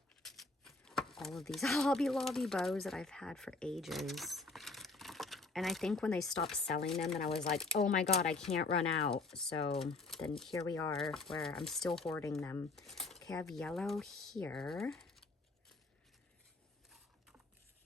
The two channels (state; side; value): quieter; right; 3.5 dB